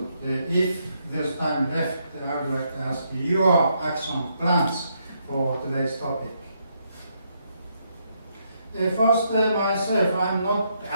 if there's time left, I would like to ask you your action plans for today's topic. First, myself, I'm not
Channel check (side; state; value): both; inverted; correlation -0.76